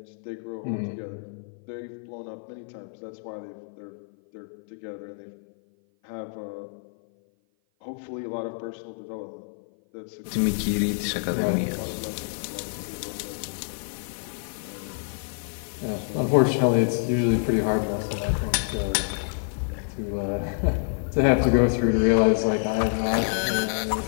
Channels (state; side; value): silent; right; 55 dB below the other